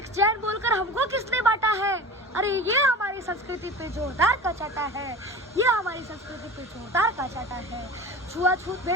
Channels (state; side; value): normal; both; correlation 0.34